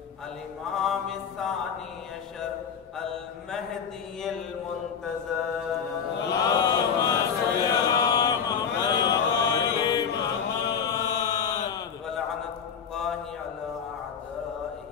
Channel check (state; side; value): quieter; right; 7.0 dB